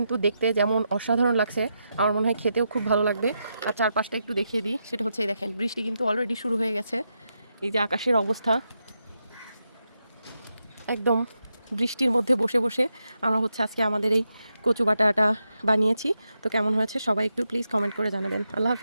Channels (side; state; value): both; inverted; correlation -0.85